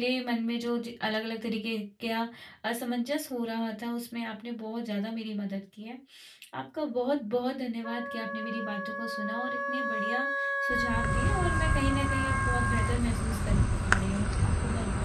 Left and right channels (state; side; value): identical; both; correlation 1.00